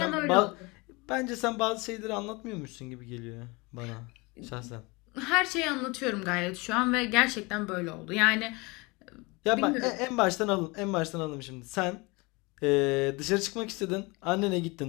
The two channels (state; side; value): quieter; right; 26.0 dB